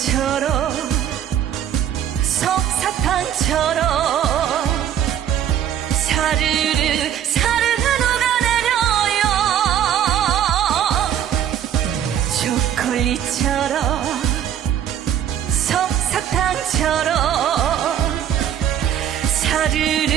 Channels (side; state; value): left; quieter; 10.0 dB